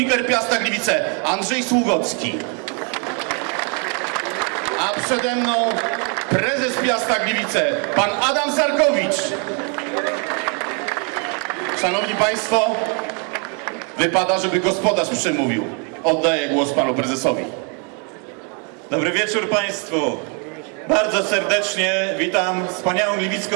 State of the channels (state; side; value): quieter; left; 37.3 dB